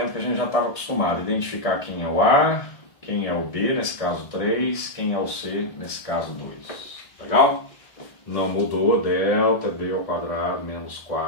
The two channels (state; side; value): late; right; 1.6 ms